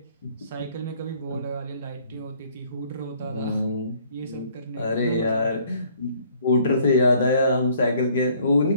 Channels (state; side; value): inverted; both; correlation -0.60